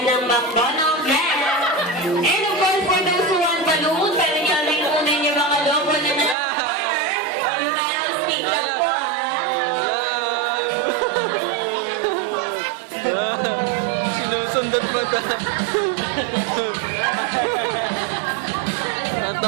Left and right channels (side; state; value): left; drops out; at 6.4 s